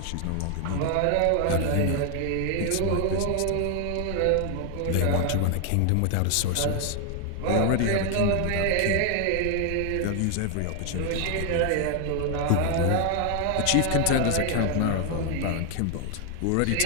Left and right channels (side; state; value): both; different; correlation 0.00